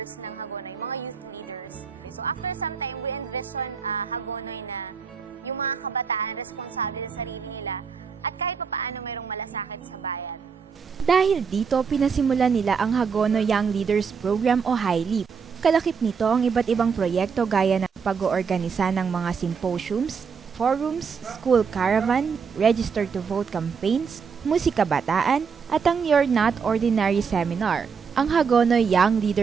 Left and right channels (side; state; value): left; quieter; 6.1 dB